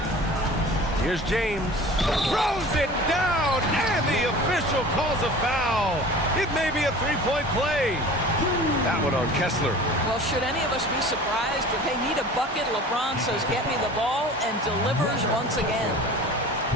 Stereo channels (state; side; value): normal; both; correlation 0.41